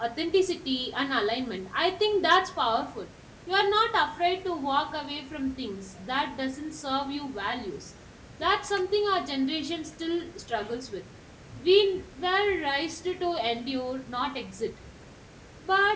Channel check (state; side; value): identical; both; correlation 1.00